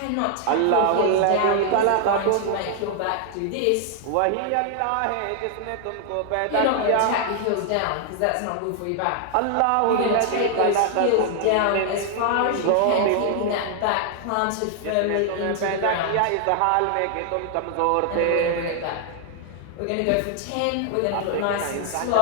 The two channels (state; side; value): different; both; correlation 0.00